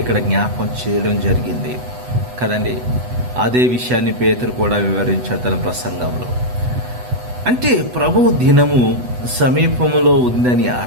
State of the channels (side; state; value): left; late; 8.1 ms